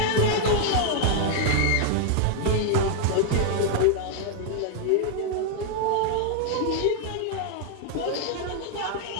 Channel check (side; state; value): both; different; correlation 0.00